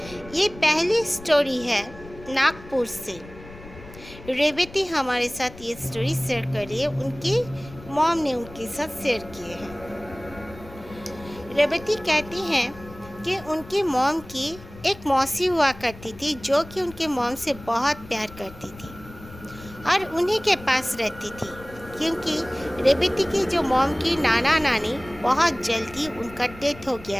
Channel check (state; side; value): noise; left; rumble, 18 dB below the sound